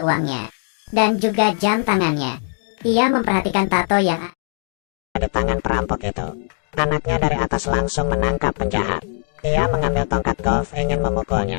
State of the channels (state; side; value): silent; right; digital silence